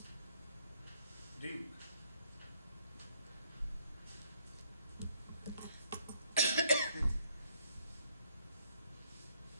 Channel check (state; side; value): inverted; both; correlation -0.68